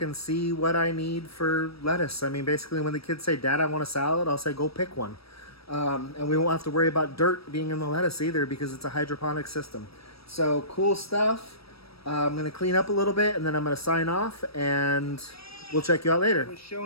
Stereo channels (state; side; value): late; right; 0.76 ms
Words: and see what I need for lettuce. I mean, basically when the kids say, "Dad, I want a salad," I'll say, "Go pick one." And we won't have to worry about dirt being in the lettuce either because it's a hydroponic system. So cool stuff. I'm going to clean up a little bit, and then I'm going to sign off, and we'll check you out later. I was